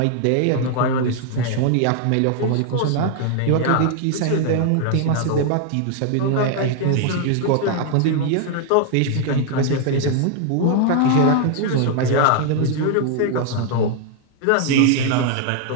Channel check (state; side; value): different; both; correlation 0.00